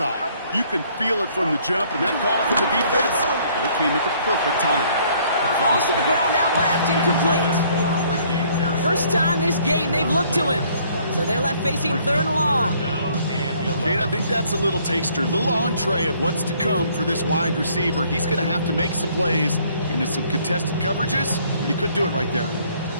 You can feel it from the jump, and that call from the defense, it came at the perfect time. Falls to the ground out left, incomplete. First time this game they've looked to him. So they're left facing 3rd and long. Kate, I think that's a little taster, a little entree of what's to come for this wide receiver. He's going to have to make some plays into some contested coverages, and he couldn't do it right there.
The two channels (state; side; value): inverted; both; correlation -0.62